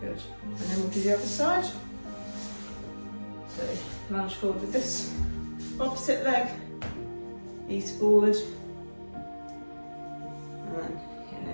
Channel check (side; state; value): both; inverted; correlation -1.00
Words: Good. And then we'll do the other side. So lunge forward with this opposite leg, ease forward, and then getting